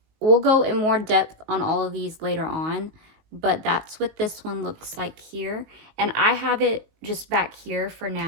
go in more depth on all of these later on, but that's what this one looks like here. And I have it just back here for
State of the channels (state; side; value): late; left; 19 ms